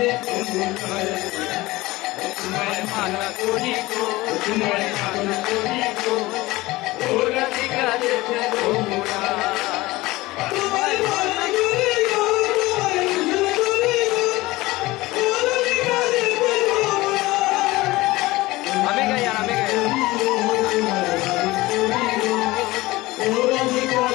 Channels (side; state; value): right; quieter; 19.7 dB